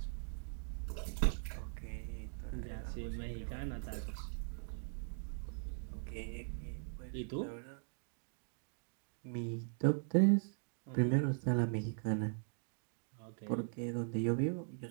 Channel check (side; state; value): left; silent; digital silence